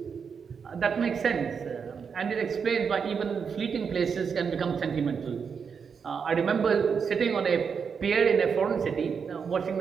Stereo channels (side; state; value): left; quieter; 6.3 dB